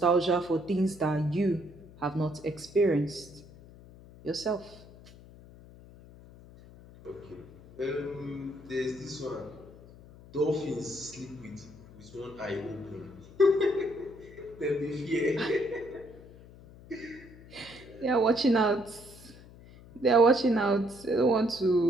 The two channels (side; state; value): left; noise; hum, 20 dB below the sound